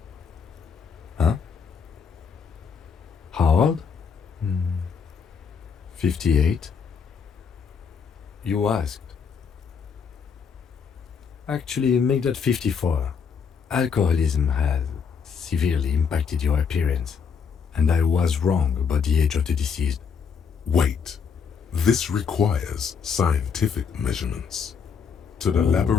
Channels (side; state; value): right; quieter; 6.3 dB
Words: Huh? How old? 58. You asked. Actually, make that 54. Alcoholism has severely impacted your appearance, and I was wrong about the age of the deceased. Wait. This requires scientific measurements. To the